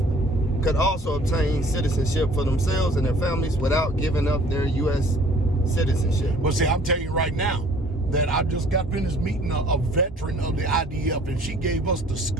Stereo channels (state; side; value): normal; both; correlation 0.54